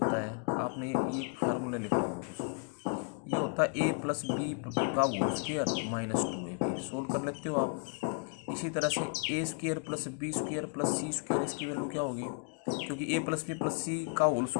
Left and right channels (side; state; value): right; quieter; 38.3 dB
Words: है, आपने ये फार्मूला लिख रहा हूँ कुछ, ये होता है a प्लस बी का होल स्क्वायर -2ab, सोल्व कर लेते हो आप। इसी तरह से a² plus b² plus c², इसकी वैल्यू क्या होगी, क्योंकि a plus b plus c का होल